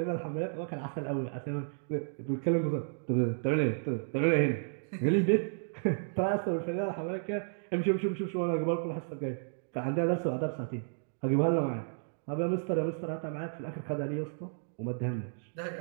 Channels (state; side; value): silent; left; digital silence